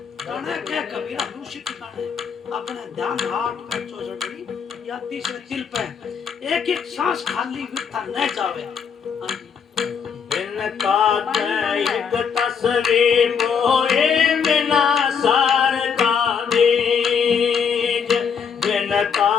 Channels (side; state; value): right; quieter; 6.7 dB